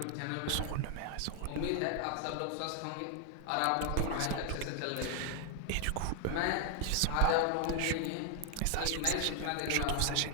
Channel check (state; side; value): different; both; correlation 0.00